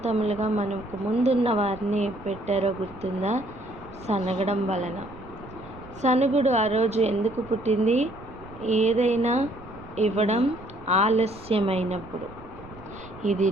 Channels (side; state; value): right; noise; rumble, 19 dB below the sound